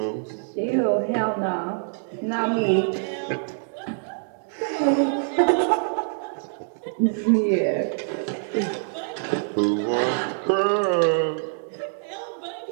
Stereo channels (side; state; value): left; silent; digital silence